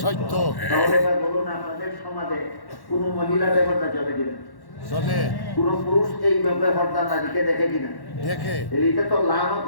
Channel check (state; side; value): late; right; 1.1 ms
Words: সত্য। তাহলে এবার বলুন, আপনাদের সমাজে কোন মহিলা বেপরদা চলে কিনা? চলে। কোন পুরুষ এই বেপরদা নারীকে দেখে কিনা? দেখে। এটা তো